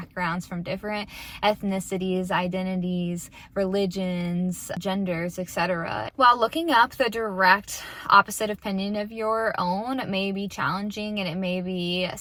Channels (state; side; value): identical; both; correlation 1.00